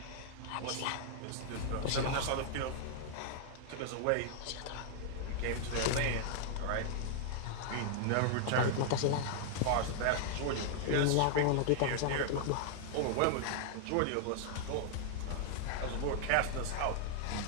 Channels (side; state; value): both; different; correlation -0.01